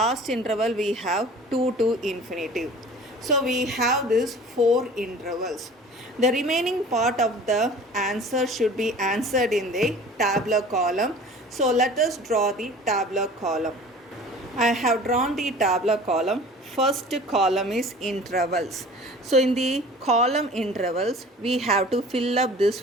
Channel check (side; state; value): both; normal; correlation 0.43